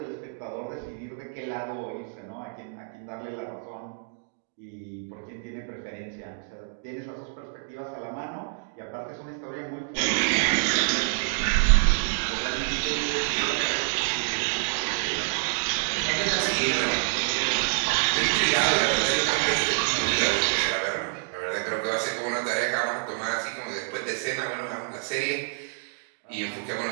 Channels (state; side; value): silent; left; digital silence